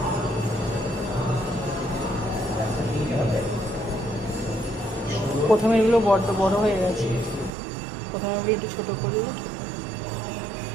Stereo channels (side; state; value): left; drops out; at 7.5 s